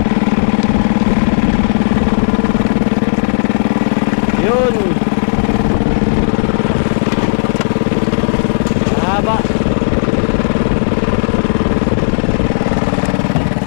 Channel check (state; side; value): silent; right; digital silence